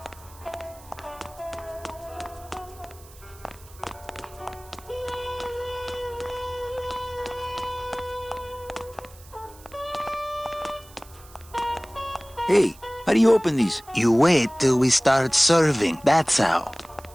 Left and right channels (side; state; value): right; noise; hiss, 23 dB below the sound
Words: Hey, how do you open these? You wait till we start serving, that's how.